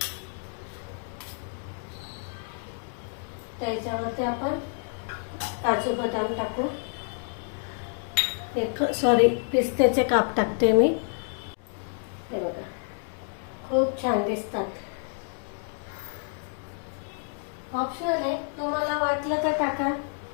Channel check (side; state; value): right; silent; 56 dB below the other